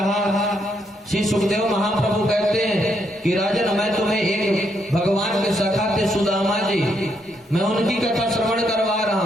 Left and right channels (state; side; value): normal; both; correlation 0.76